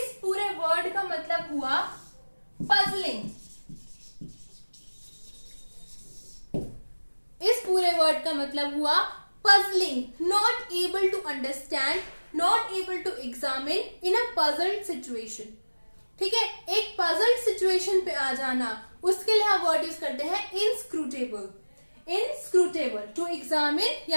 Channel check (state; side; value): inverted; both; correlation -1.00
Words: पूरे वर्ड का मतलब हुआ puzzling. इस पूरे वर्ड का मतलब हुआ puzzling, not able to understand, not able to examine in a puzzled situation. ठीक है, एक puzzled situation पे आ जाना, उसके लिए हम वर्ड यूज करते हैं inscrutable. inscrutable to examine